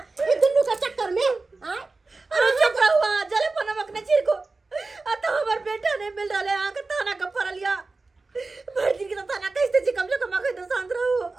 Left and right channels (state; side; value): quieter; left; 3.7 dB